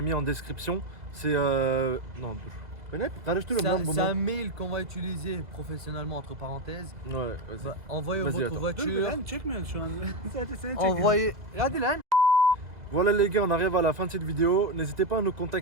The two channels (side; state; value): left; late; 2.0 ms